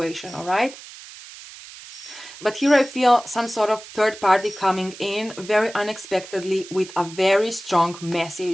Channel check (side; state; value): right; noise; hiss, 16 dB below the sound